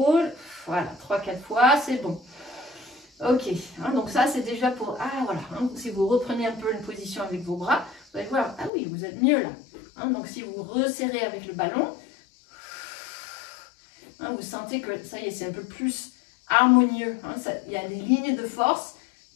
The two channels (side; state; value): right; drops out; at 8.7 s